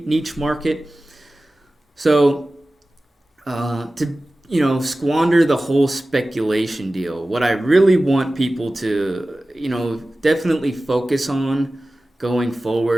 market. So, to squander the whole speculation deal, what I really want people to, definitely focus on going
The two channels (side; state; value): both; normal; correlation 0.96